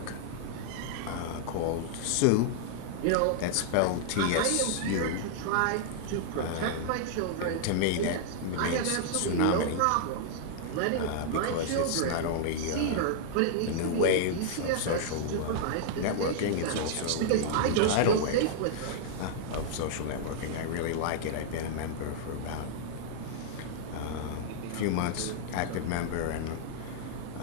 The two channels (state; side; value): different; both; correlation -0.01